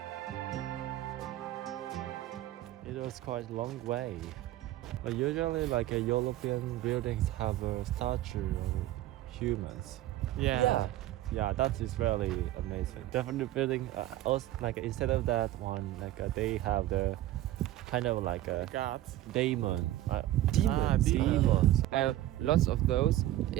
It was quite a long way. But usually like European buildings have a statue of humans. Yeah. Yeah, that is really amazing. Definitely building also like instead of that one, like they have the kind of like a Guards. demon. Demons. Demons. Lots of those.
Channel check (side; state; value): left; quieter; 14.6 dB